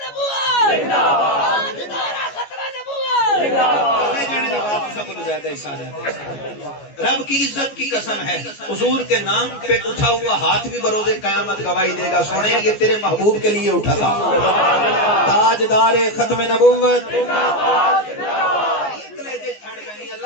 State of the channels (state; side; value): late; right; 14 ms